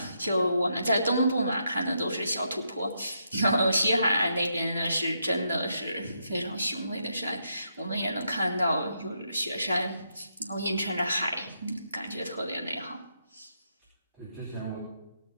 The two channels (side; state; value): both; inverted; correlation -0.79